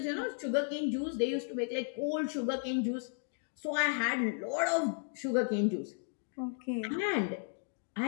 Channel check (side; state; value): right; silent; 55 dB below the other